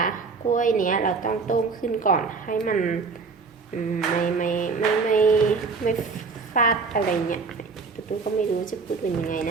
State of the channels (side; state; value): left; quieter; 4.6 dB